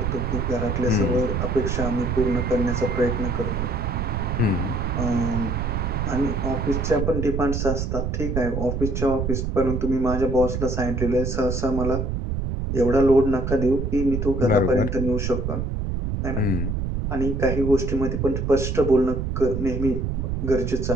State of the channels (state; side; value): noise; right; rumble, 1 dB below the sound